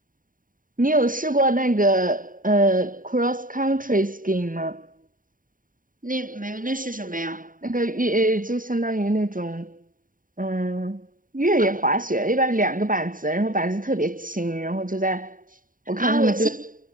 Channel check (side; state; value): left; late; 0.39 ms